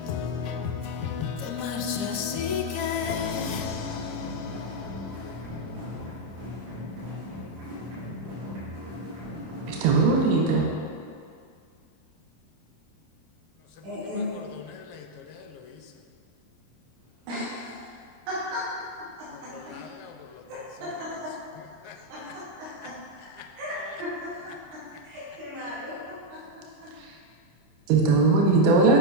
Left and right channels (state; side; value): late; left; 25 ms